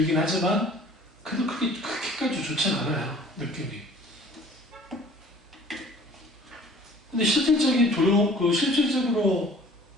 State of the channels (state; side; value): normal; both; correlation 0.50